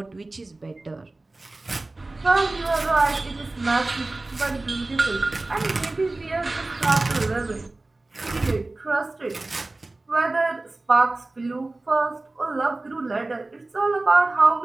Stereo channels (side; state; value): left; quieter; 3.0 dB